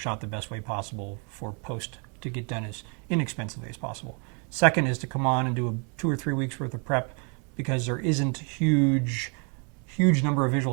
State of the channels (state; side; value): quieter; left; 36.1 dB